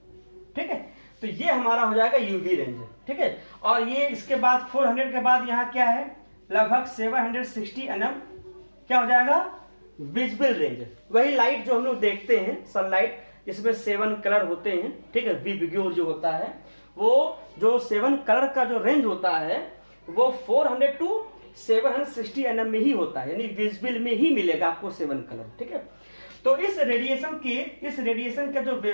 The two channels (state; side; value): inverted; both; correlation -1.00